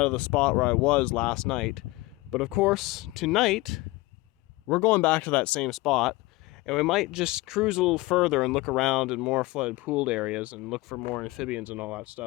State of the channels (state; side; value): quieter; right; 21.3 dB